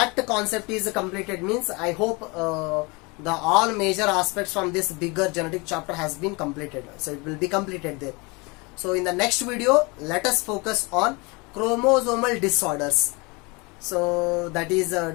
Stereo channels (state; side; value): quieter; right; 27.5 dB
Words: concept is completed, means I hope the all major aspects from this bigger genetic chapter has been completed. So it will be completed there. So in the next video, let us focus on chromosomal disorders. So that is